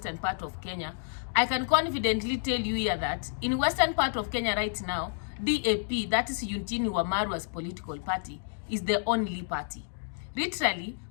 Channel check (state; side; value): silent; right; digital silence